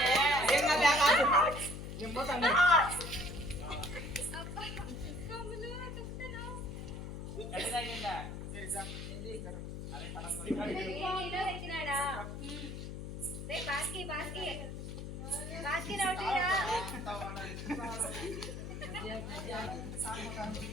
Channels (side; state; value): left; noise; hum, 7 dB below the sound